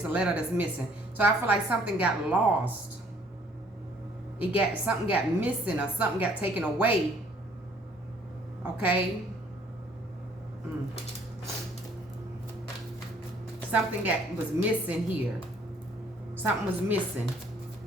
a letter that's missing. So I feel like something got lost. Something got missing, or something got taken away. Okay. Something was missing here. Something was missing.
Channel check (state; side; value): normal; both; correlation 0.60